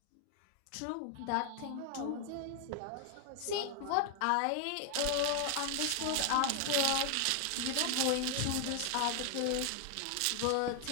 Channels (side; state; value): both; different; correlation 0.00